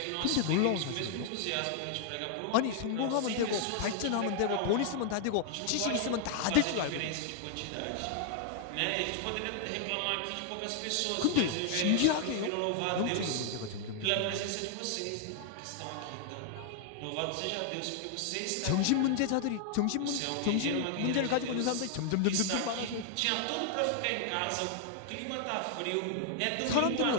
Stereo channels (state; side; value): different; both; correlation 0.00